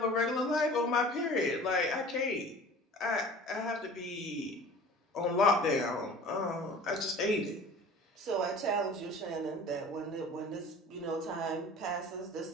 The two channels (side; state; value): both; normal; correlation 0.43